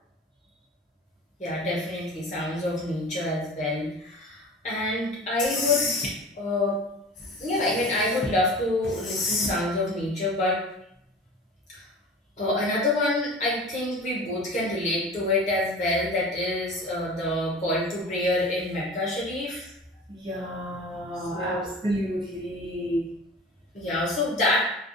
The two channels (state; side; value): normal; both; correlation 0.38